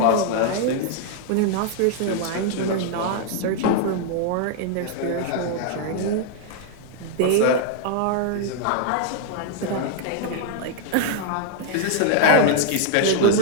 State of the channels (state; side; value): different; both; correlation 0.00